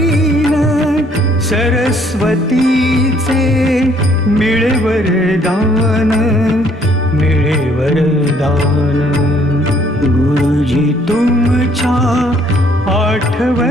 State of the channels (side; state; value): both; normal; correlation 0.64